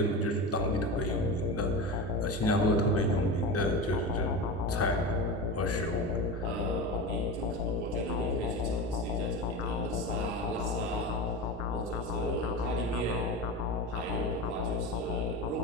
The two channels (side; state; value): both; normal; correlation 0.25